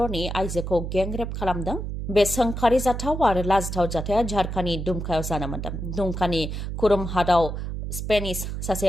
आइजोखौ गेंरेप खालामदों बे सोंखारि जाथाव आरो लाजिथाव जाथाया झारखान्डनि दुमकायाव जानो मोन्दों दुमकानि खुरुम हादाव स्पेनिश सासे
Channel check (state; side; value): noise; right; hum, 5 dB below the sound